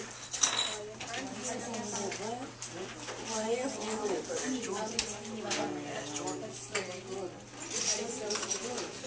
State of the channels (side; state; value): both; identical; correlation 1.00